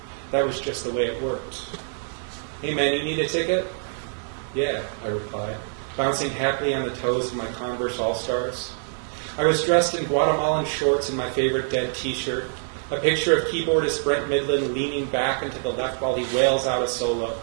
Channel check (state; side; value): silent; left; digital silence